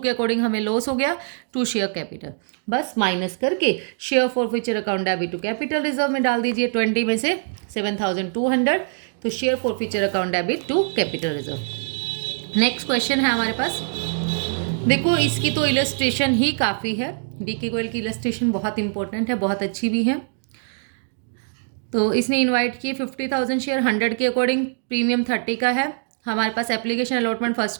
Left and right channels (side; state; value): left; silent; digital silence